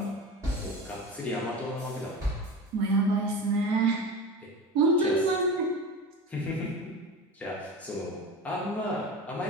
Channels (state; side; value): normal; both; correlation 0.29